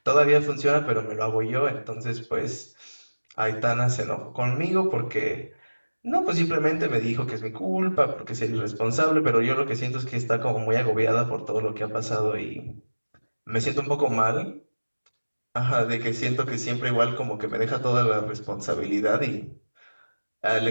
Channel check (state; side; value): inverted; both; correlation -1.00